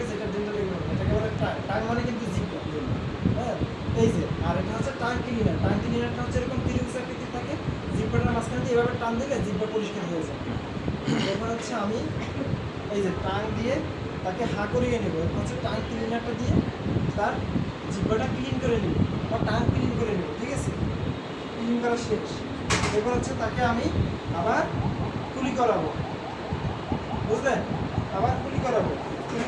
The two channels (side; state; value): both; identical; correlation 1.00